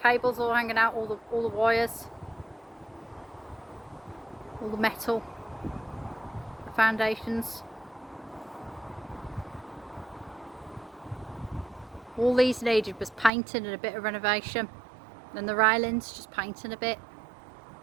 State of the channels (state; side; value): drops out; left; at 13.3 s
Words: all hanging out, all the wires. All the metal. The foundations. All these needed was painting and a bit of renovation. And the railings, just painting a bit.